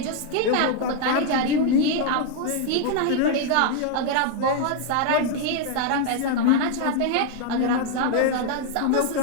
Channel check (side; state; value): both; different; correlation 0.00